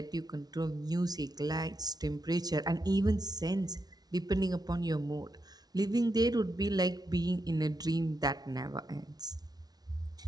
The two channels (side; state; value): left; late; 0.19 ms